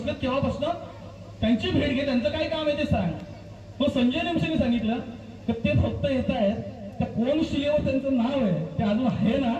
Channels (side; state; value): both; identical; correlation 1.00